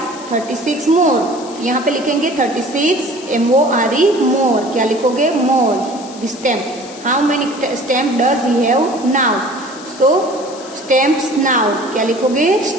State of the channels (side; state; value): left; noise; hiss, 17 dB below the sound